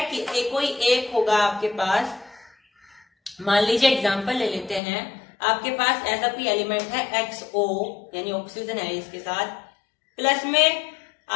कि कोई एक होगा आपके पास, मान लीजिए एग्जांपल ले लेते हैं, आपके पास ऐसा कोई एलिमेंट है XO, यानी ऑक्सीजन है इसके साथ, प्लस में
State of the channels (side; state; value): right; drops out; at 4.8 s